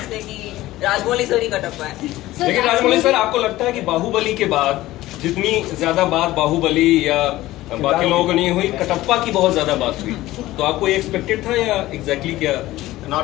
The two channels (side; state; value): right; quieter; 16.6 dB